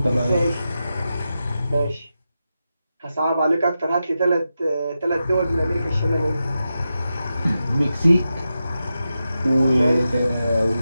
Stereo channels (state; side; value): inverted; both; correlation -0.90